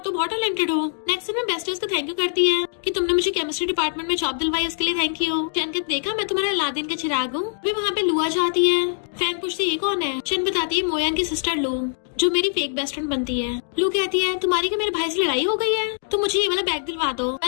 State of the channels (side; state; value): right; silent; digital silence